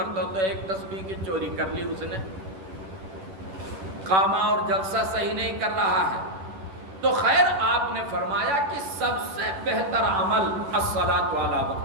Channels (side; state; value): left; late; 10 ms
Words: تو 1 تسبیح کی چوری کر لی اس نے، قامہ اور جلسہ صحیح نہیں کر رہا ہے۔ تو خیر آپ نے فرمایا کہ سب سے بہتر عمل الصلاۃ علی